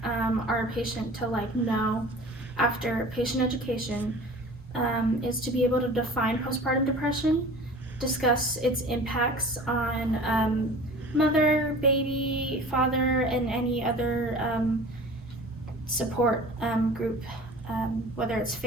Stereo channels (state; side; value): normal; both; correlation 0.42